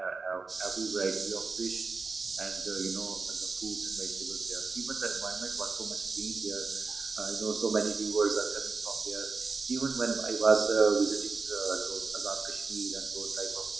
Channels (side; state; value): left; quieter; 4.3 dB